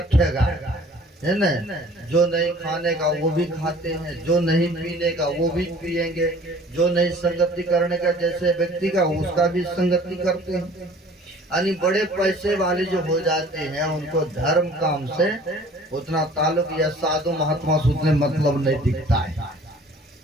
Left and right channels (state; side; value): normal; both; correlation 0.50